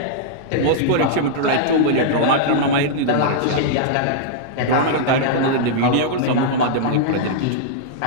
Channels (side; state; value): both; different; correlation -0.02